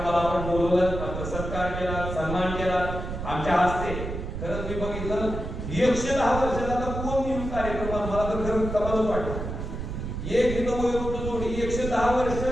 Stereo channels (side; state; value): right; noise; rumble, 6 dB below the sound